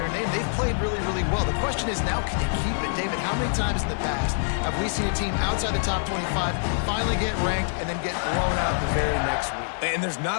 name. They've played really, really well. The question is, now can you keep it? David, how many times in the past have we seen a team outside the top 25 finally get ranked and then get blown out the very next week? And there's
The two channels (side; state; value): right; silent; digital silence